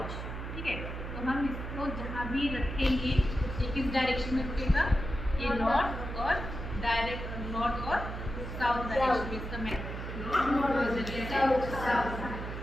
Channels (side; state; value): right; noise; hum, 7 dB below the sound